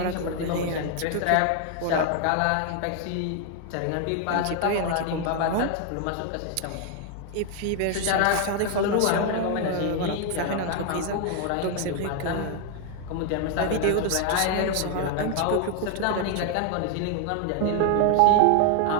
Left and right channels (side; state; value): both; different; correlation 0.00